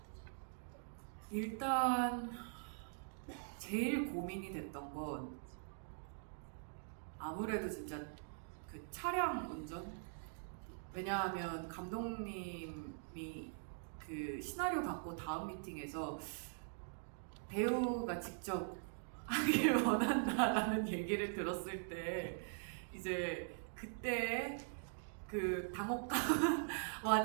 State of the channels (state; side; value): silent; left; digital silence